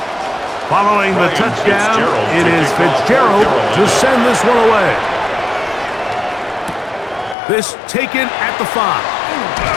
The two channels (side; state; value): right; drops out; at 7.4 s